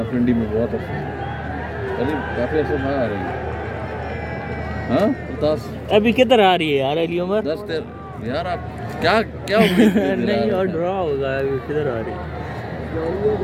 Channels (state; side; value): identical; both; correlation 1.00